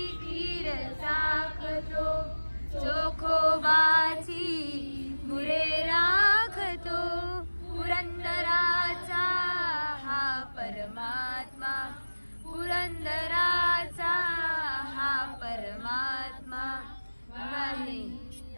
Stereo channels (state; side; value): inverted; both; correlation -1.00